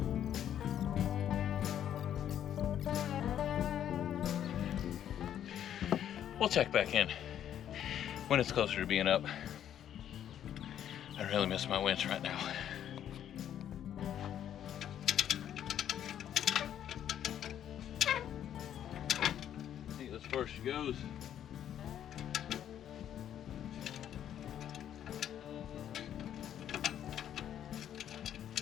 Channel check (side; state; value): right; quieter; 10.3 dB